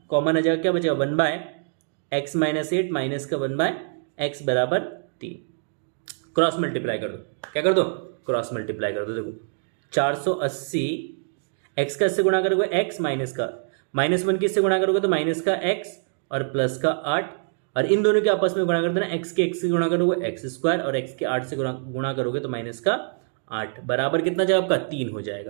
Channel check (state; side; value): silent; left; digital silence